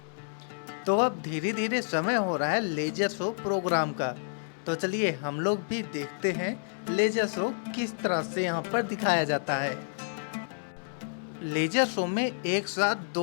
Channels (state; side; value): silent; right; 58 dB below the other